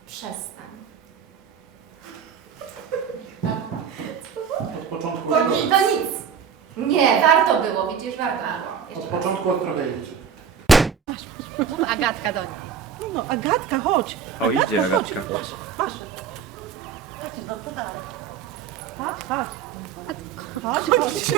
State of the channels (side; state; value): left; quieter; 7.3 dB